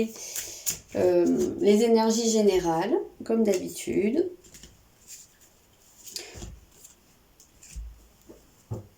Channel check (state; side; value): identical; both; correlation 1.00